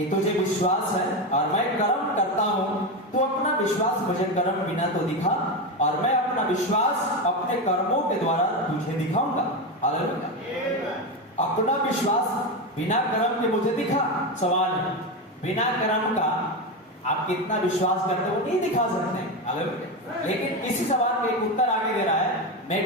तुझे विश्वास है और मैं कर्म करता हूं, तो अपना विश्वास मुझे कर्म बिना तो दिखा, और मैं अपना विश्वास अपने कर्मों के द्वारा तुझे दिखाऊंगा। हालेलुया। अपना विश्वास बिना कर्म के मुझे दिखा। सवाल है, बिना कर्म का आप कितना विश्वास करते हो नहीं दिखा सकते। हालेलुया। लेकिन इसी सवाल का एक उत्तर आगे दे रहा है, मैं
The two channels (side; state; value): both; normal; correlation 0.15